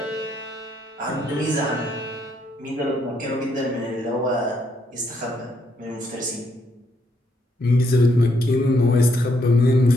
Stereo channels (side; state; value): both; normal; correlation 0.74